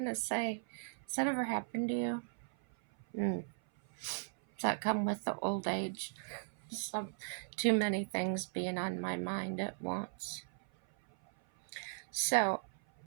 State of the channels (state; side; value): silent; left; 53 dB below the other